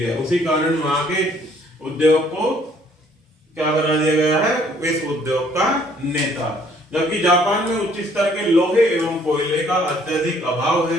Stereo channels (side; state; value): both; normal; correlation 0.62